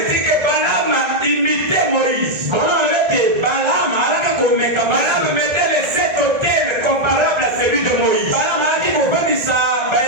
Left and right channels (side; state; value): left; late; 1.7 ms